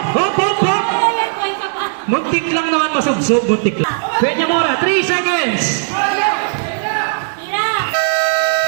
hop, hop, hop. Muntik lang naman masubsob, muntik lang. Peña Mora, 3 seconds.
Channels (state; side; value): silent; left; 58 dB below the other